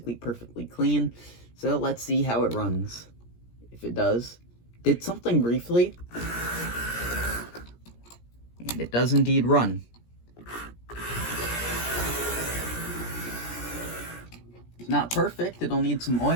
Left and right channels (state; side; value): late; right; 17 ms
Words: perfectly clean. So let's see how it runs. If it does. Did something briefly. And it does indeed run. It's not perfect, it'll need some